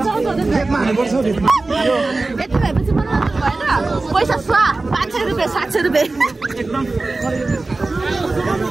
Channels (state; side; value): quieter; left; 3.4 dB